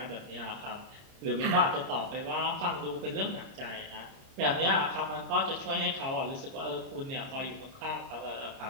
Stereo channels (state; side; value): late; left; 30 ms